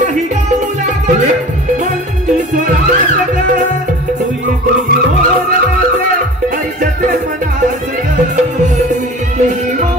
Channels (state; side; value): normal; both; correlation 0.40